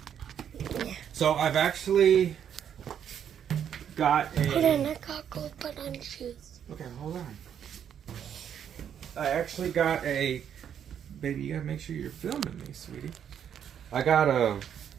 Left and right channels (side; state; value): left; quieter; 8.8 dB